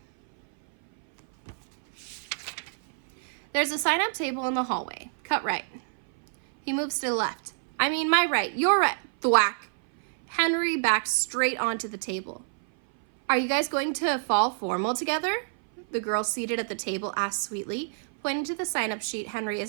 There's a sign-up table in the hallway. Cut right. He moves to the left. I mean, my right. Your right. Thwack. Henry backs straight onto the table. Are you guys going to fall formal together? The girl seated at the table asked sweetly, pointing to the sign-up sheet Henry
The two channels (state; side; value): silent; left; 57 dB below the other